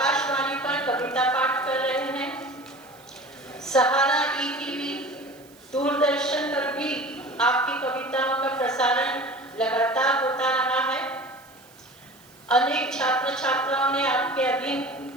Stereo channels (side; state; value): right; noise; hiss, 26 dB below the sound